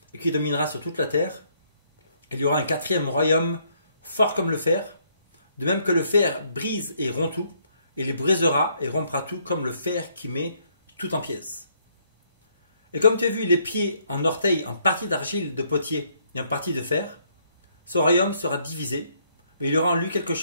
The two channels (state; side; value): inverted; both; correlation -0.70